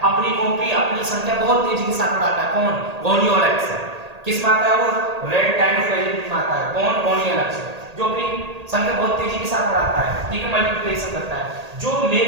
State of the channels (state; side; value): late; left; 1.8 ms